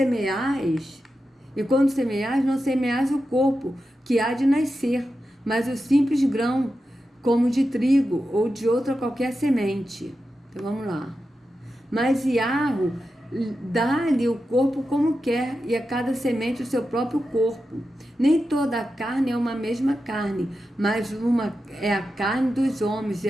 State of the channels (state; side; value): normal; both; correlation 0.90